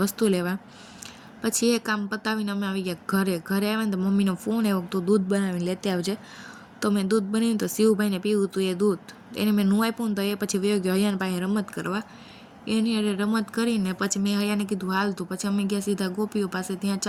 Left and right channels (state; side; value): identical; both; correlation 1.00